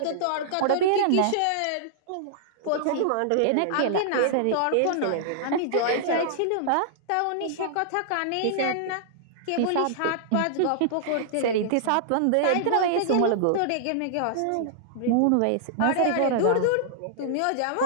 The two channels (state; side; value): different; both; correlation -0.01